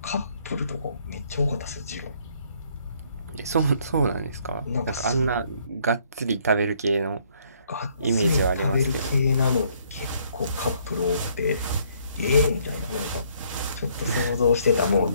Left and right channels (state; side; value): inverted; both; correlation -0.66